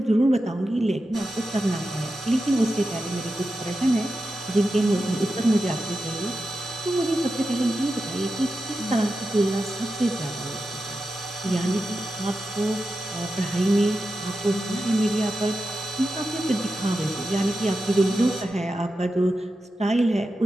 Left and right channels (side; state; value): both; normal; correlation 0.90